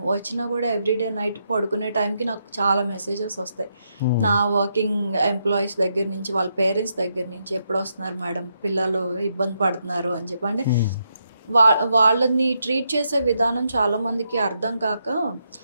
వచ్చినా కూడా ఎవ్రీడే నైట్ పడుకునే టైంకి నాకు చాలా మెసేజెస్ వస్తాయి నా వర్కింగ్ ఎంప్లాయీస్ దగ్గర నుంచి, వాళ్ళ పేరెంట్స్ దగ్గర నుంచి, ఎప్పుడు వస్తున్నారు మేడం, పిల్లలు ఇబ్బంది పడుతున్నారు అని చెప్పి. అంటే వాళ్ళని ట్రీట్ చేసే విధానం చాలామందికి అర్థం కాక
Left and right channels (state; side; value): inverted; both; correlation -0.80